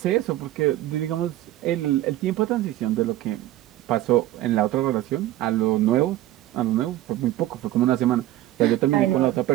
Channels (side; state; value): left; quieter; 14.6 dB